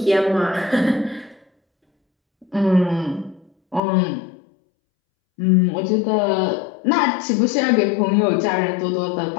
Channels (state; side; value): drops out; right; at 3.8 s